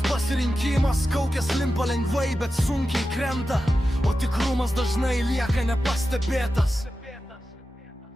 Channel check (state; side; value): normal; both; correlation 0.92